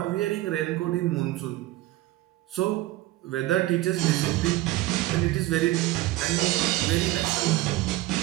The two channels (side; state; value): left; quieter; 17.1 dB